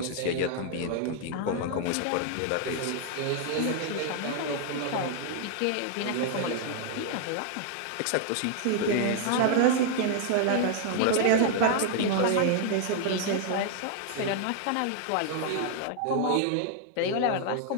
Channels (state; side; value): different; both; correlation 0.00